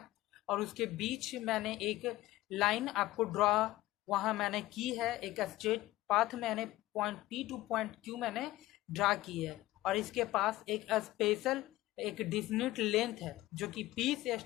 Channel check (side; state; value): right; quieter; 16.8 dB